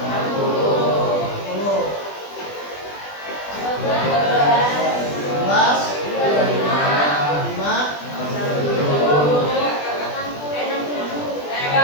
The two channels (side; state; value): right; late; 20 ms